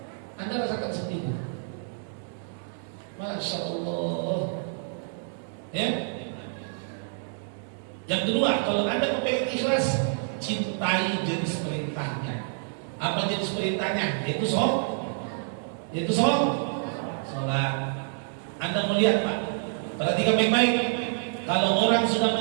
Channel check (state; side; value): silent; left; 60 dB below the other